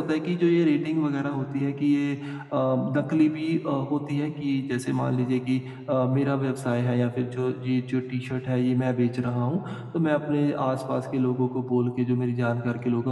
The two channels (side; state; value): both; identical; correlation 1.00